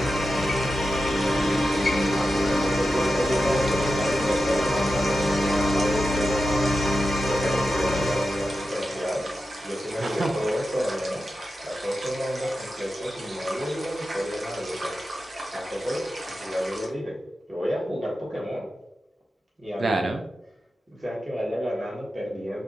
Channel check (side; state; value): both; normal; correlation 0.91